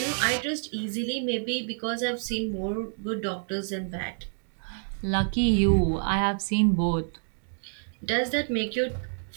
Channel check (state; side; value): silent; left; digital silence